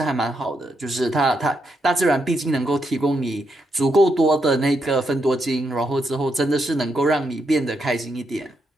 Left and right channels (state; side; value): normal; both; correlation 0.80